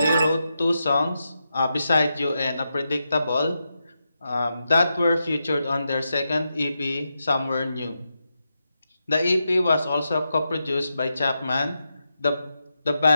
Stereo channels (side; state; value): both; inverted; correlation -0.87